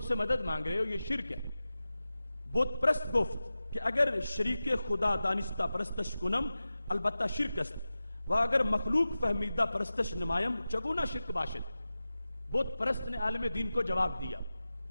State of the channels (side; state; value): both; inverted; correlation -0.95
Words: سے مدد مانگ رہے ہو، یہ شرک ہے۔ بت پرست گفت کہ اگر شریک خدا دانستہ پرستش کنم البتہ شرک است، و اگر مخلوق فہمیدہ پرستش نمایم چگونا شرک باشد۔ بت پرست نے عالم دین کو جواب دیا